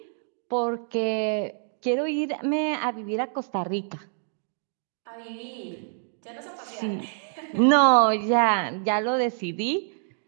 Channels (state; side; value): silent; left; 61 dB below the other